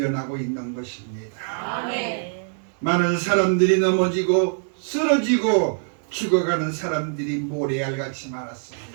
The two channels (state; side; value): silent; left; 63 dB below the other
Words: 있는 것입니다. 아멘. 많은 사람들이 넘어지고 쓰러지고 죽어가는 사람들이 모래알같이